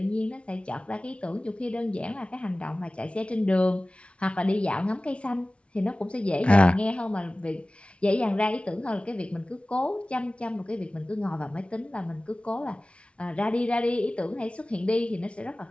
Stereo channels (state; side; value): late; right; 0.060 ms